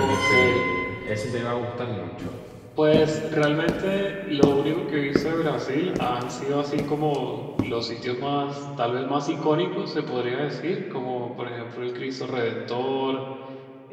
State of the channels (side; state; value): both; identical; correlation 1.00